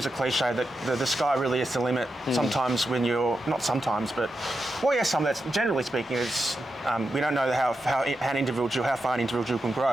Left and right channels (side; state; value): both; normal; correlation 0.88